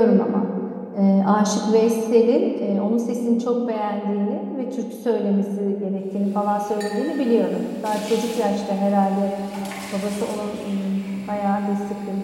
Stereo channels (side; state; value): both; identical; correlation 1.00